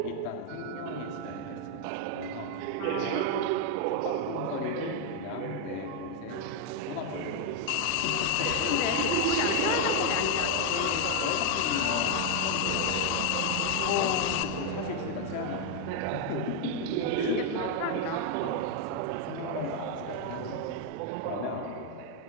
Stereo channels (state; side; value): different; both; correlation 0.01